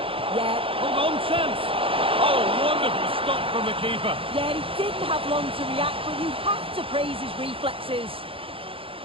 Yeah. Hold on, chance. Oh, wonderful stop from the keeper. Yeah, he didn't have long to react, but you have to praise his reflexes.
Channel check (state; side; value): late; left; 0.27 ms